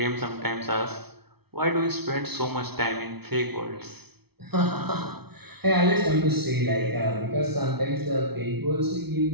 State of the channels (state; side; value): late; left; 0.97 ms